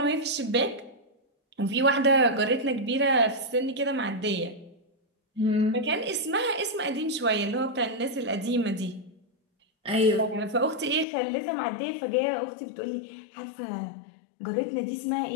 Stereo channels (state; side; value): drops out; right; at 11.1 s